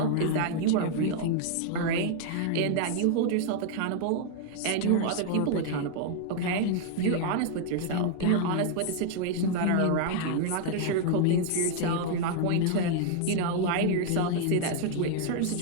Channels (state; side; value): different; both; correlation 0.00